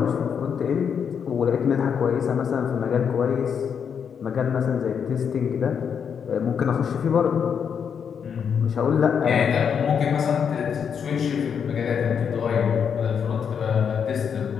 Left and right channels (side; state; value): right; quieter; 7.2 dB